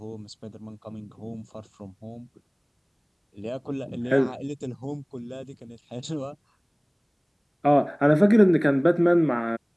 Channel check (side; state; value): both; identical; correlation 1.00